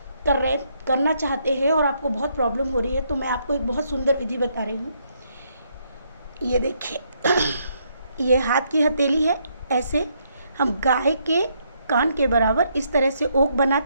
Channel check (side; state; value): both; inverted; correlation -0.74